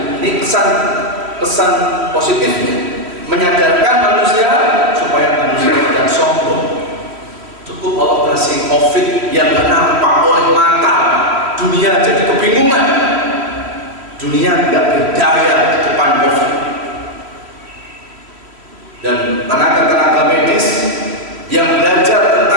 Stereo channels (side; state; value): left; late; 3.1 ms